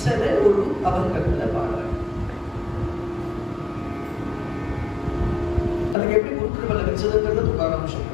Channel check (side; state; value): right; drops out; at 6.0 s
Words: ஒரு அபங்கத்துல பாடுற. தனக்கு எப்படி குரு கிருபை லபிச்சதுங்கிறது துகாராம்